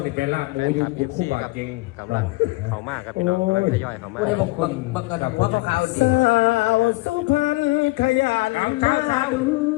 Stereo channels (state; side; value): quieter; right; 22.6 dB